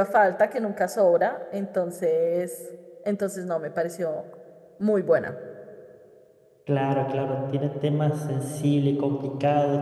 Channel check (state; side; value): identical; both; correlation 1.00